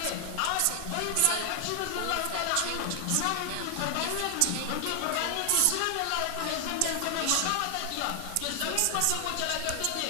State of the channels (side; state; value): both; different; correlation 0.00